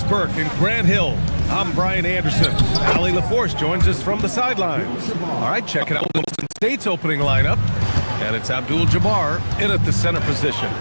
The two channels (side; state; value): both; inverted; correlation -1.00